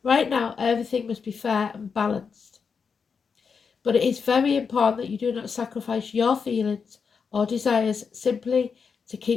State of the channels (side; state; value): right; quieter; 5.8 dB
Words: Right now, everything must be fair and balanced. But it is very important that you do not sacrifice your feelings or desires simply to